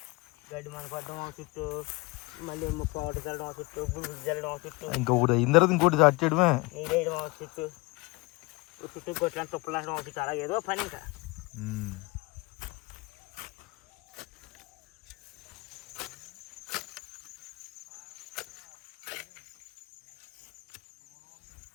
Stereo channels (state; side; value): quieter; right; 25.0 dB